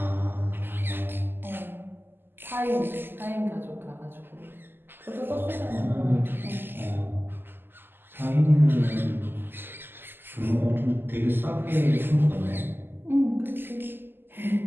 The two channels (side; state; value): left; late; 0.098 ms